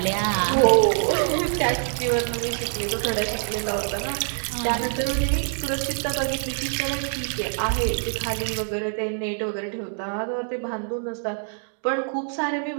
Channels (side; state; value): left; silent; digital silence